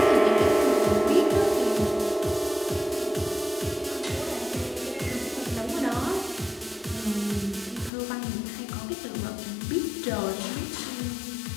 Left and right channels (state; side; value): drops out; right; at 7.9 s